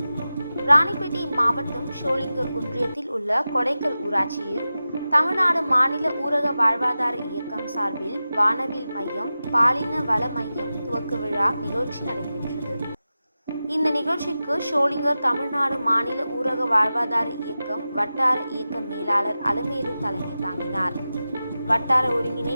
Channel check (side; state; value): both; inverted; correlation -0.94